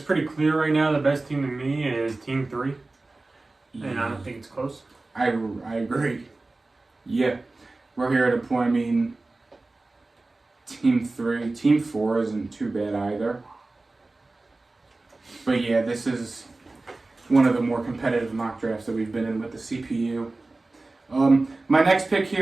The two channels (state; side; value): quieter; left; 3.2 dB